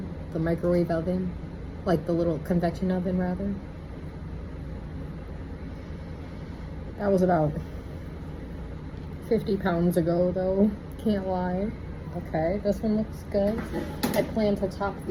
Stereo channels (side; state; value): both; identical; correlation 1.00